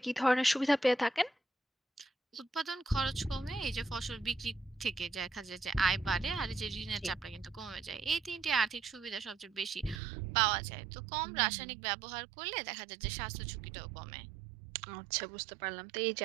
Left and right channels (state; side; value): drops out; left; at 10.0 s